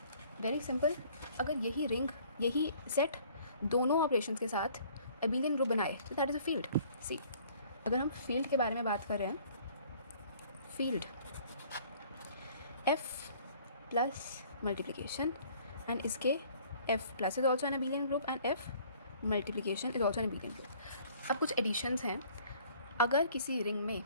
वेरी सिंपल, अगर यही सेट दोनों ऑपरेशंस के साथ अबेलियन ग्रुप बनाए तो दैट इज़ अ फील्ड। सी, अगर हम फील्ड के बारे में बात कर रहे हैं, field f plus multiplication and इसके f plus is also an abelian group and f multiplication is also an abelian group. अब कुछ एडिशंस हैं. अगर किसी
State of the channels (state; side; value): inverted; both; correlation -0.55